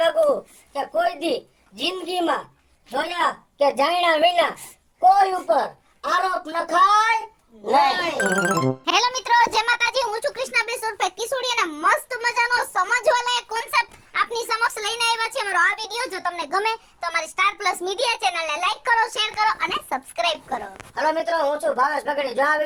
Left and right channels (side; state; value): both; identical; correlation 1.00